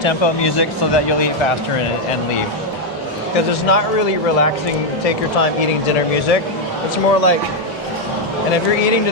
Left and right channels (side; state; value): both; normal; correlation 0.02